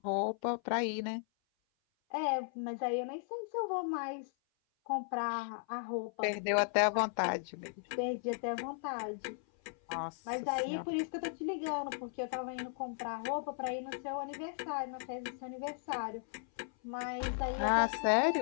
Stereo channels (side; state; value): right; silent; 54 dB below the other